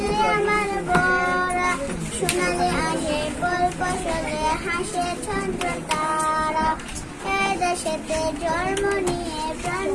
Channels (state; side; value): identical; both; correlation 1.00